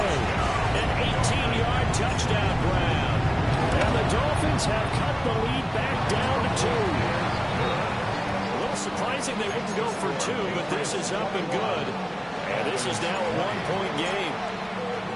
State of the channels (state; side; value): identical; both; correlation 1.00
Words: An 18-yard touchdown grab. And the Dolphins have cut the lead back down to 2. A little surprising they wouldn't go for 2, but this is up and good. And this is now a 1-point game.